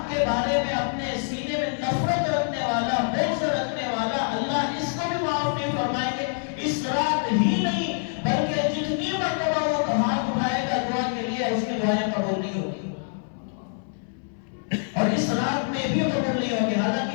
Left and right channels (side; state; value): right; silent; 61 dB below the other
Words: کے بارے میں اپنے سینے میں نفرت رکھنے والا، بغض رکھنے والا، اللہ اس کو بھی معاف نہیں فرمائیں گے۔ اس رات ہی نہیں بلکہ جتنی مرتبہ وہ ہاتھ اٹھائے گا دعا کے لیے، اس کی دعائیں قبول نہیں ہوگی، اور اس رات میں بھی قبول نہیں ہوگی۔ حالانکہ